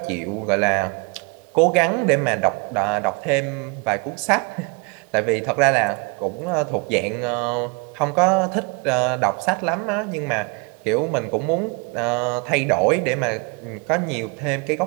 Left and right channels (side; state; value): left; quieter; 31.9 dB